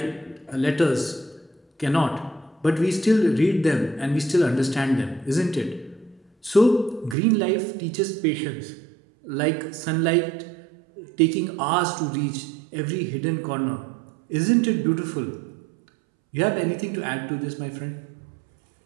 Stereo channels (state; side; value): drops out; left; at 7.2 s